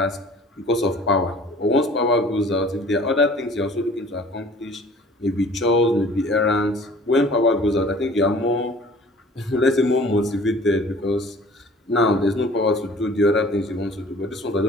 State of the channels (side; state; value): both; normal; correlation 0.49